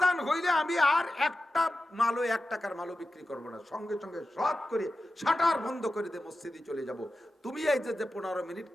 হইলে আমি আর একটা মালও 1 টাকার মালও বিক্রি করবো না। সঙ্গে সঙ্গে সৎ করে শাটার বন্ধ করে দিয়ে মসজিদে চলে যাব। তুমি এই যে 15 মিনিট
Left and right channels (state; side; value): normal; both; correlation 0.93